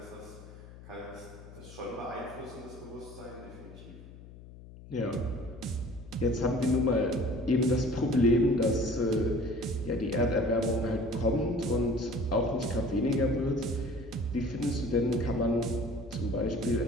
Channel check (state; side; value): noise; left; hum, 17 dB below the sound